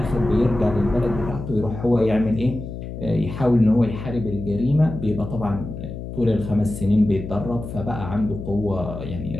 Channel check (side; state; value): left; noise; hum, 9 dB below the sound